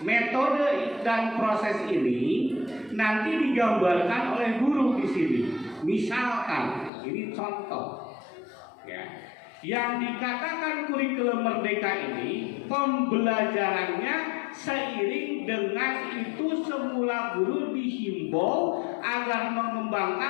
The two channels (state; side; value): drops out; right; at 6.9 s